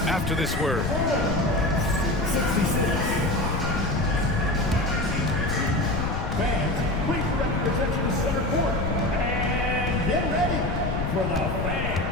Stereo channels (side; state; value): left; noise; rumble, 2 dB below the sound